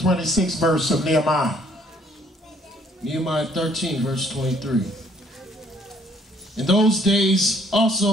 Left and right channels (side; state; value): both; normal; correlation 0.62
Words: verse of Nehemiah. Nehemiah 13, verse 23. In those days